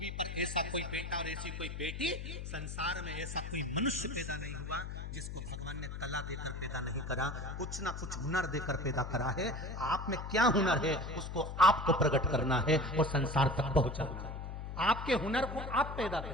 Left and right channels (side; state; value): left; noise; hum, 7 dB below the sound